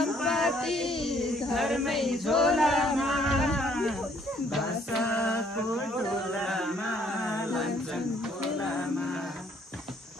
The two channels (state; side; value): normal; both; correlation 0.64